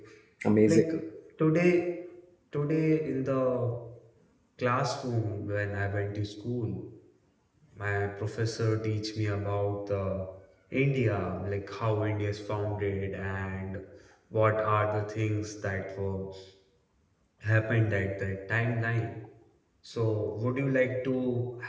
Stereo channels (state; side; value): identical; both; correlation 1.00